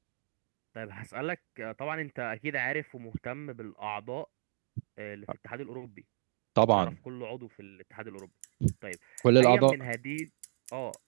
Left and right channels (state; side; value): silent; left; digital silence